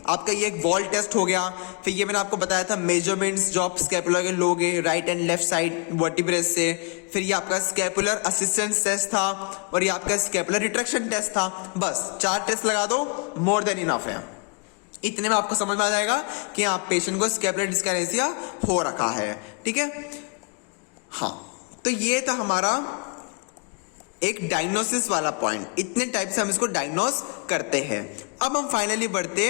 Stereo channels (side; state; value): right; quieter; 35.6 dB